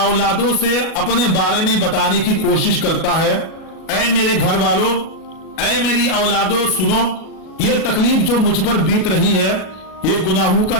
से अपने बारे में बताने की कोशिश करता है, ऐ मेरे घर वालों, ऐ मेरी औलादों, सुनो, ये तकलीफ जो मुझ पर बीत रही है ये गुनाहों का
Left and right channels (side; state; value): right; late; 37 ms